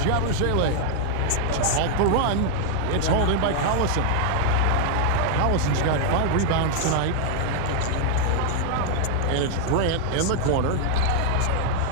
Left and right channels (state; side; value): different; both; correlation 0.00